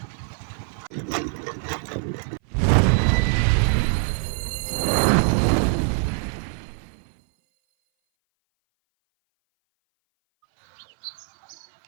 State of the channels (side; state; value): left; silent; 58 dB below the other